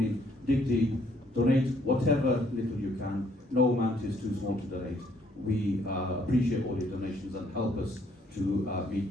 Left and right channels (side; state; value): both; normal; correlation 0.66